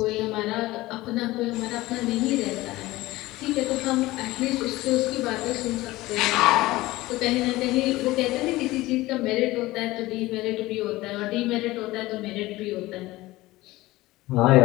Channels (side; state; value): right; quieter; 18.6 dB